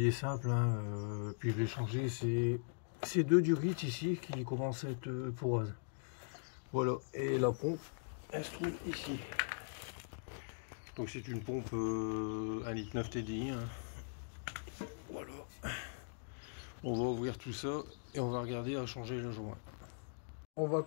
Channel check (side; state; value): right; silent; digital silence